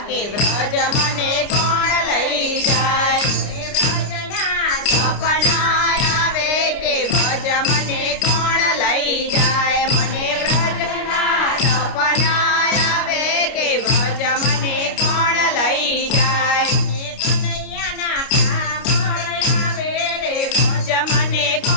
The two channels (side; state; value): right; late; 29 ms